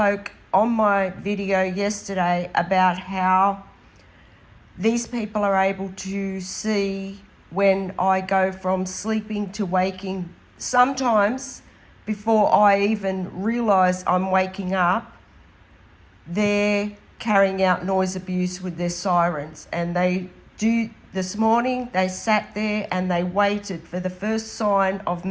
on my video yesterday about how these people are able to see when I go from sleeping to waking. Sometimes before I even realise I'm waking up, they're carrying out noise abuse with their sirens. And they do. This morning they sat there and they waited for the first sign of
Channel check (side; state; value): both; identical; correlation 1.00